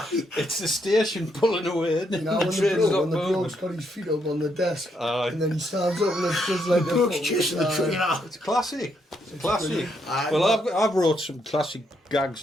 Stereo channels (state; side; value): normal; both; correlation 0.76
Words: It's the station pulling away, isn't it? You know, The when train's not the moving. bloke's got his feet up on the desk, Aye. and then he stands up and it's just like the bloke's chasing the train out. It's classic. It's classic. Aye. Well, I've wrote some classic gags